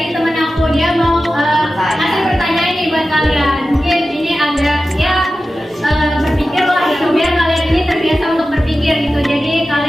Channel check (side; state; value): both; normal; correlation 0.94